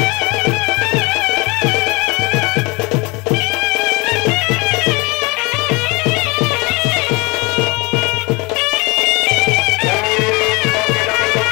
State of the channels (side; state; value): right; quieter; 26.4 dB